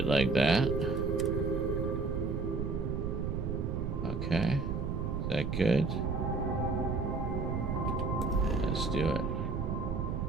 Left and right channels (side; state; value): right; noise; rumble, 1 dB below the sound